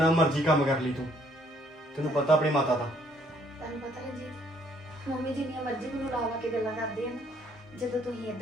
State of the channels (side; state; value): both; normal; correlation 0.65